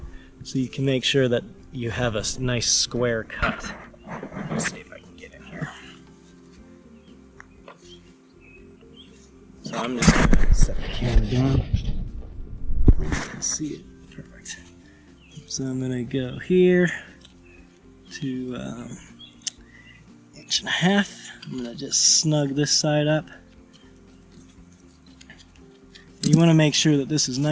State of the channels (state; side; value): identical; both; correlation 1.00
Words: so you can make sure that you have a nice square cut. Let's see if I can get in here. So I'm just going to set the camera down. Let's see it. Perfect. So I'm going to go here to 1.5 inches. I'm going to just snug this side up. You want to make sure that this is